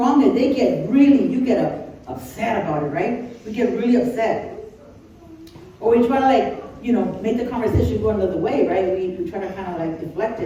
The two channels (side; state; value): both; identical; correlation 1.00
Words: and you get upset about it, right? We get really upset. Or we try to make the conversation go another way, right? We try to kind of deflect